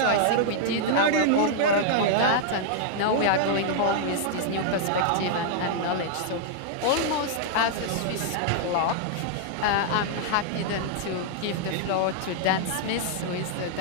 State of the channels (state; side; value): different; both; correlation -0.01